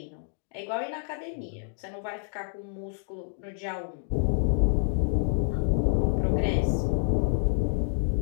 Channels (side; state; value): right; silent; digital silence